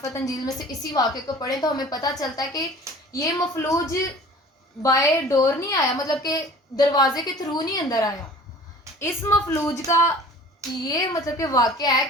انجیل میں سے اسی واقعے کو پڑھیں تو ہمیں پتہ چلتا ہے کہ یہ مفلوج بائے ڈور نہیں آیا، مطلب کہ دروازے کے تھرو نہیں اندر آیا۔ اس مفلوج کا یہ مطلب کہ واقعہ ہے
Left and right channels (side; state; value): both; normal; correlation 0.45